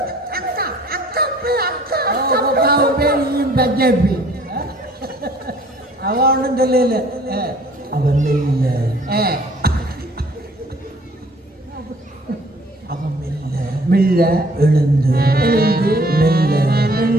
அவ ஒன்றும் சொல்லல. அவன் மெல்ல அவன் மெல்ல மெல்ல எழுந்து எழுந்து மெல்ல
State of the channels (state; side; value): normal; both; correlation 0.56